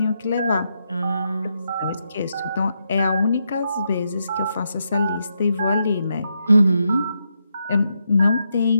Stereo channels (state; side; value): inverted; both; correlation -0.82